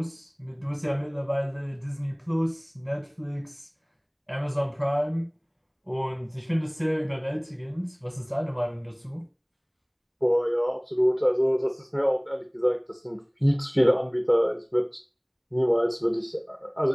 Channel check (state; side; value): identical; both; correlation 1.00